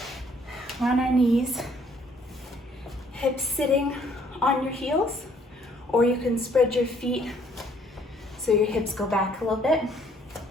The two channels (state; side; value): normal; both; correlation 0.63